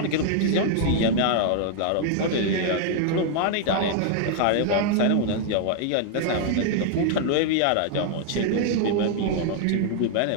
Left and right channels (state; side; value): different; both; correlation 0.00